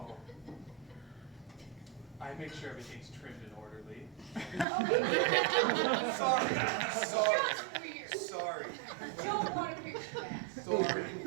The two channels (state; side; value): drops out; left; at 4.7 s